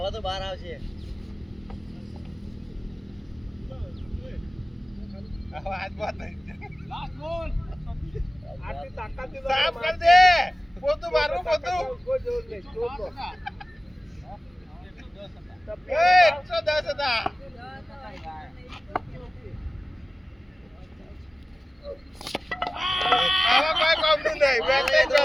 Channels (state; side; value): normal; both; correlation 0.97